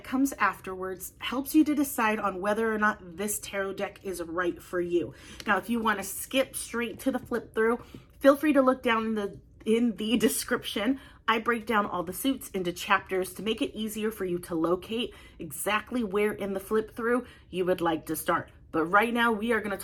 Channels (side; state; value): both; identical; correlation 1.00